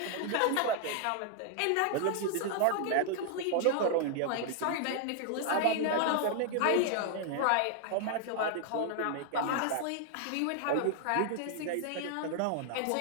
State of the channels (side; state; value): both; different; correlation 0.00